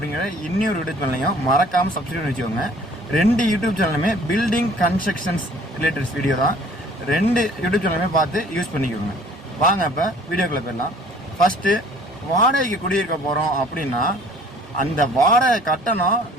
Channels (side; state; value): both; normal; correlation 0.53